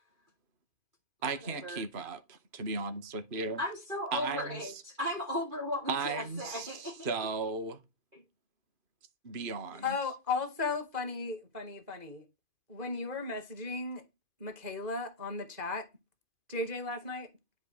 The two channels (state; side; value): late; left; 2.5 ms